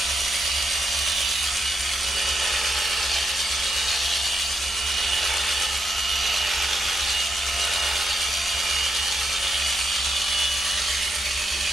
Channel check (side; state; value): both; normal; correlation 0.82